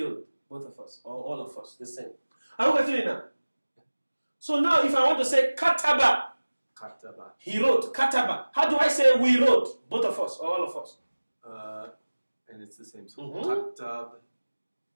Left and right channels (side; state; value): both; inverted; correlation -1.00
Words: both of us, or all of us, the same. Are you getting it now? So now if I want to say kataba, Kataba. he wrote, kataba. How do I say we wrote? Both of us, or all of us? And it's the same. So Mm-hmm.